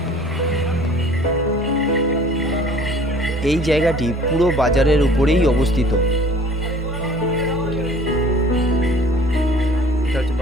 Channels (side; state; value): both; normal; correlation 0.50